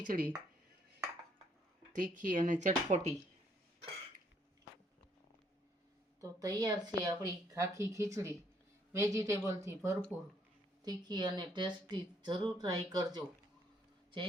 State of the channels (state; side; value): normal; both; correlation 0.68